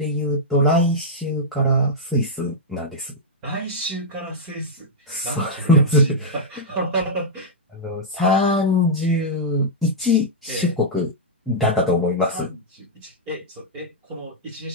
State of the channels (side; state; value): both; normal; correlation -0.07